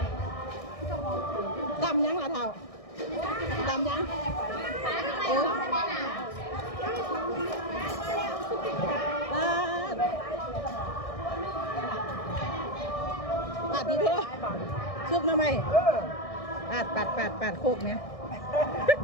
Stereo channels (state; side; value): late; right; 1.6 ms